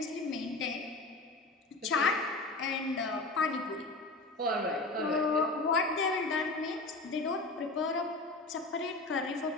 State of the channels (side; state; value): right; quieter; 3.2 dB